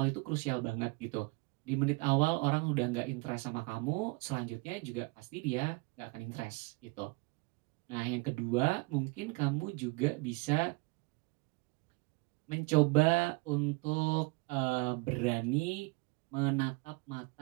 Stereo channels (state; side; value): quieter; left; 26.4 dB